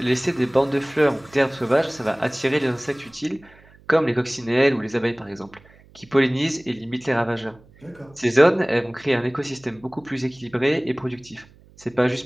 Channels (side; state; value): right; noise; hum, 27 dB below the sound